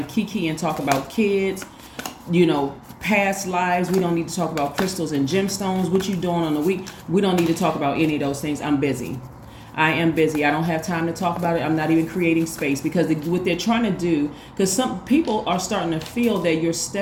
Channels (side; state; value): both; identical; correlation 1.00